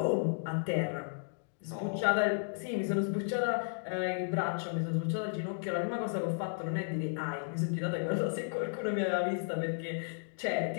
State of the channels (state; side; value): silent; right; digital silence